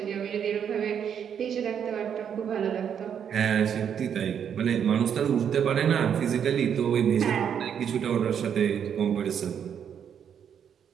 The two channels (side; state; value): left; quieter; 8.2 dB